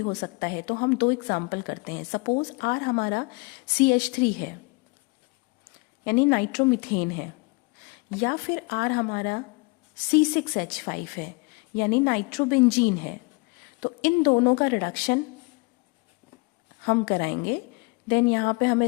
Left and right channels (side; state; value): right; quieter; 28.8 dB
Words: सकता है। तो हम 2 एग्जाम्पल करते हैं। सपोज R हमारा CH3 है यानी नाइट्रोमिथेन है, या फिर R हमारा C6H5 है यानी नाइट्रोबेंजीन है। तो इन दोनों का रिडक्शन हम कराएंगे। देन यहाँ पे